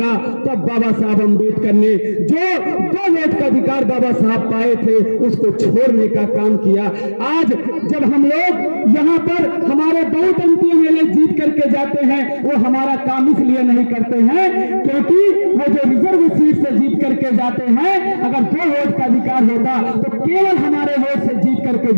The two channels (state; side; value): inverted; both; correlation -1.00